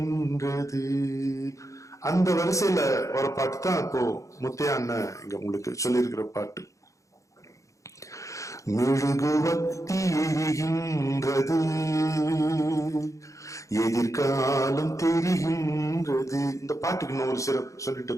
அந்த வரிசையில ஒரு பாட்டு தான் இப்போ முத்தையா அண்ணன் இங்க உங்களுக்கு சொல்லியிருக்கிற பாட்டு. மெழுகுவர்த்தி எரிகின்றது, எதிர்காலம் தெரிகின்றது. இந்த பாட்டுக்கு இன்னும் ஒரு சிறப்பு சொல்லிட்டு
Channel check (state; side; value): late; right; 0.15 ms